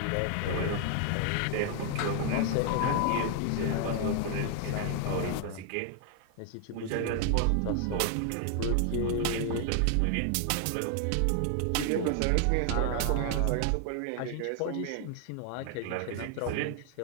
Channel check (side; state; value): both; different; correlation 0.00